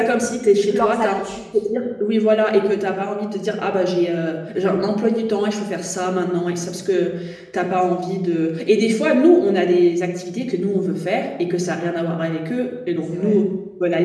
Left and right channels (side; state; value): both; identical; correlation 1.00